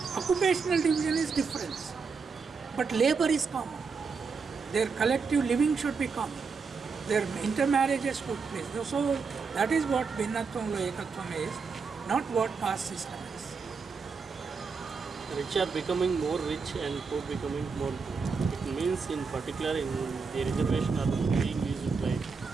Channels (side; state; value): left; quieter; 5.1 dB